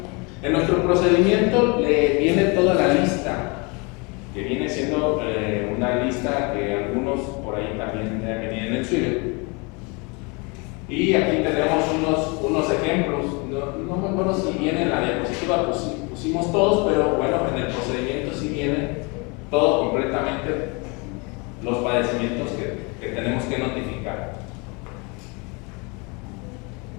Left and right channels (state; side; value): quieter; right; 30.1 dB